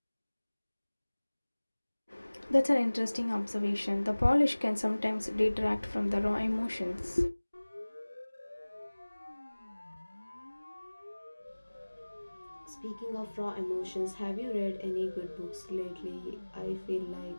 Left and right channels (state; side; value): inverted; both; correlation -1.00